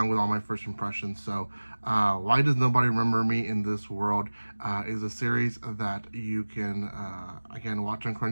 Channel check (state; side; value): inverted; both; correlation -1.00